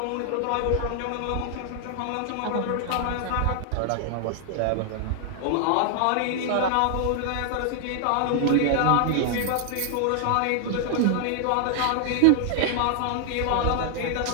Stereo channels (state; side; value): different; both; correlation 0.00